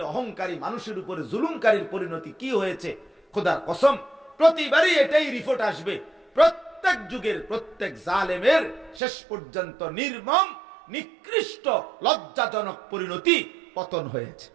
অহংকারী মানুষের উপরে জুলুমকারীর পরিণতি কি হয়েছে, খোদার কসম প্রতিবারই এটাই রিপোর্ট আসবে, প্রত্যেক যুগের প্রত্যেক জালেমের শেষ পর্যন্ত নির্মম, নিকৃষ্ট, লজ্জাজনক পরিণতি, পতন হয়েছে।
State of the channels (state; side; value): drops out; left; at 9.0 s